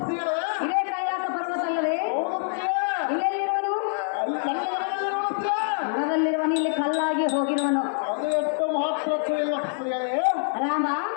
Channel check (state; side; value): silent; right; 61 dB below the other